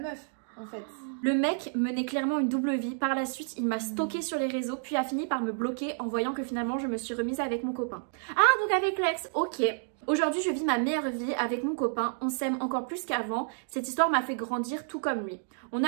en fait. Le mec menait clairement une double vie. Par la suite, il m'a stalké sur les réseaux, puis a fini par me bloquer en voyant que finalement, je me suis remise avec mon copain. Ah, donc avec l'ex, ok. Aujourd'hui, je vis ma meilleure vie avec mon copain. On s'aime encore plus qu'avant. Cette histoire m'a fait grandir tout comme lui. On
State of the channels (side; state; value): left; silent; digital silence